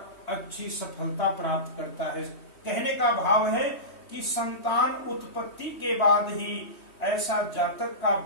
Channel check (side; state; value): right; late; 3.1 ms